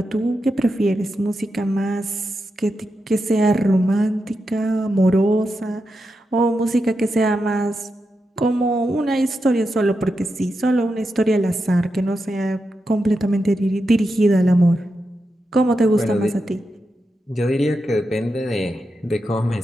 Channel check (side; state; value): both; normal; correlation 0.87